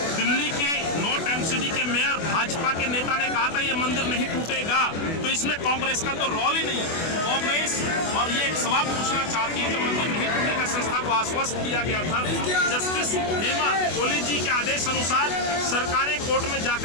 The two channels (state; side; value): late; right; 24 ms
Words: दिल्ली के नॉर्थ एमसीडी के मेयर भाजपा के नेता ने कहा था ये मंदिर नहीं टूटेगा। तो इसमें कांग्रेस का तो रोल ही नहीं। कांग्रेस और ये सवाल पूछना चाहती है, जब मंदिर नहीं टूटेगा संस्था को आश्वस्त किया गया था, जस्टिस हेमा कोहली जी के आदेश अनुसार सरकारें कोर्ट में